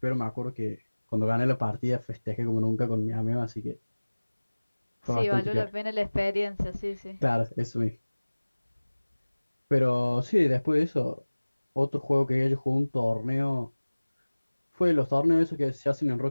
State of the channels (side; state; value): both; inverted; correlation -1.00